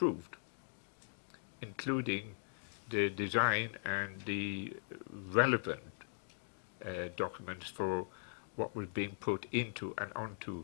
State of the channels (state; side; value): silent; right; digital silence